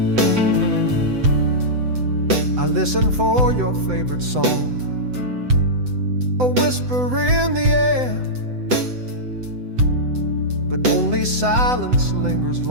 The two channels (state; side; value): late; left; 7.9 ms